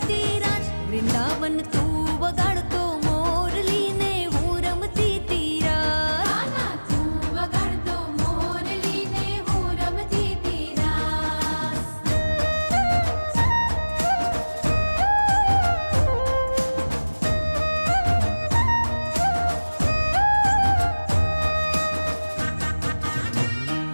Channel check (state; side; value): inverted; both; correlation -1.00